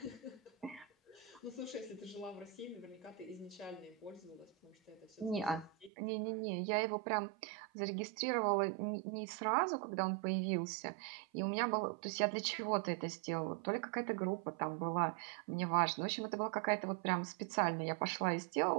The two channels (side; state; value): left; drops out; at 5.9 s